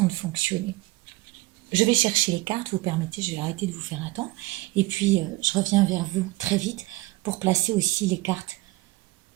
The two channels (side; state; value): left; quieter; 20.8 dB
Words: de fonctionner. Je vais chercher les cartes, vous permettez, je vais arrêter de vous faire attendre. Et puis, je reviens vers vous très vite pour placer aussi les cartes